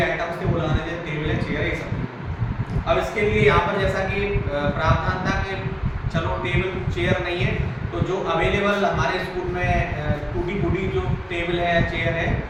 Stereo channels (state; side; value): identical; both; correlation 1.00